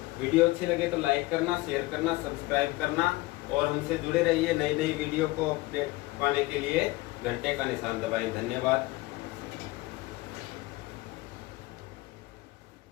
वीडियो अच्छी लगे तो लाइक करना, शेयर करना, सब्सक्राइब करना और हमसे जुड़े रहिए। नई नई वीडियो को अपडेट पाने के लिए घंटे का निशान दबाएं। धन्यवाद।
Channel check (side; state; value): right; quieter; 20.6 dB